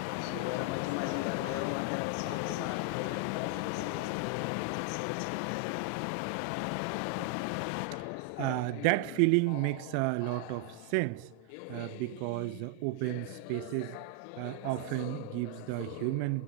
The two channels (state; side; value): different; both; correlation 0.00